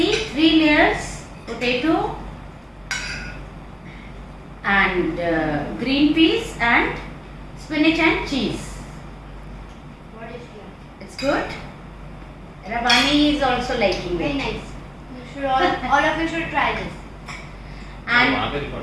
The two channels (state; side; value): identical; both; correlation 1.00